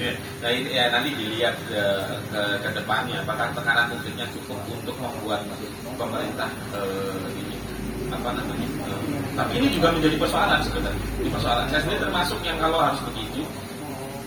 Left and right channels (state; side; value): identical; both; correlation 1.00